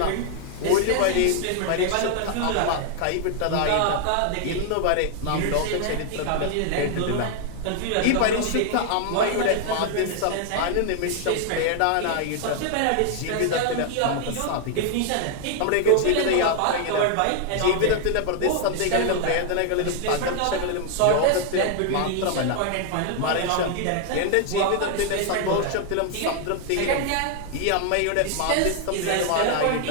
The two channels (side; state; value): both; different; correlation 0.00